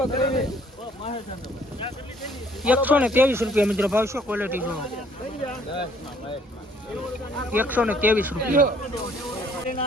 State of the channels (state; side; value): normal; both; correlation 0.61